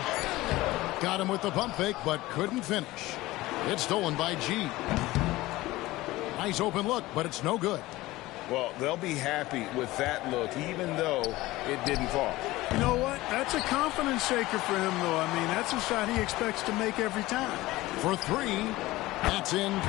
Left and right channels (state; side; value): quieter; right; 18.4 dB